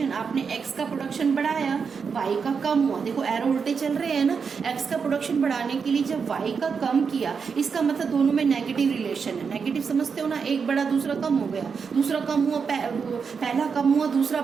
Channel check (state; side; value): quieter; left; 5.8 dB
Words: आपने एक्स का प्रोडक्शन बढ़ाया, वाई का कम हुआ। देखो एरो उल्टे चल रहे हैं ना। एक्स का प्रोडक्शन बढ़ाने के लिए जब वाई का कम किया, इसका मतलब दोनों में नेगेटिव रिलेशन है। नेगेटिव समझते हो ना, एक बढ़ा दूसरा कम हो गया, दूसरा कम हुआ पहला कम हुआ दूसरा